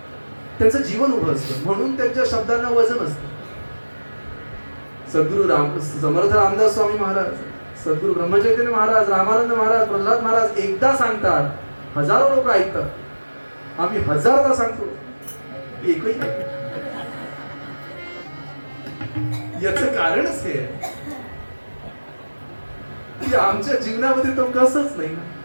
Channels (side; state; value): both; inverted; correlation -1.00